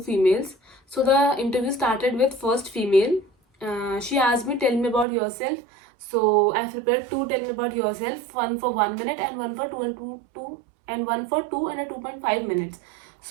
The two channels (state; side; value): drops out; left; at 5.1 s